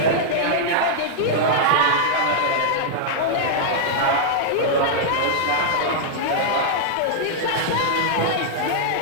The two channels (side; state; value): both; different; correlation -0.02